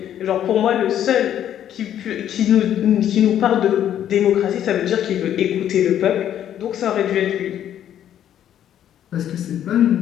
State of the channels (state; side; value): quieter; right; 10.6 dB